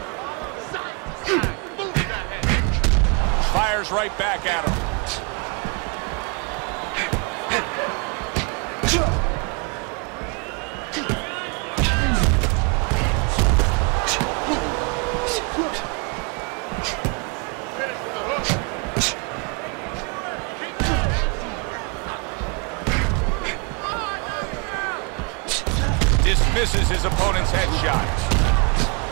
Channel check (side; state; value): left; quieter; 33.6 dB